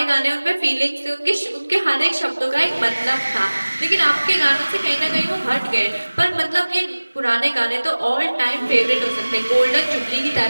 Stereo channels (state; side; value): inverted; both; correlation -1.00